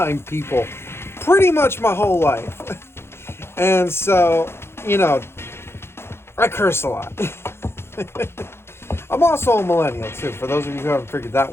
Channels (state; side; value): late; right; 0.12 ms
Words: people pretty much my whole life. And so, I curse a lot. I'm also a millennial, too, for those of you who haven't figured that